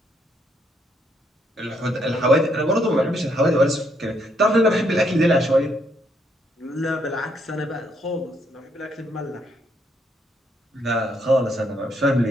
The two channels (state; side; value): normal; both; correlation 0.73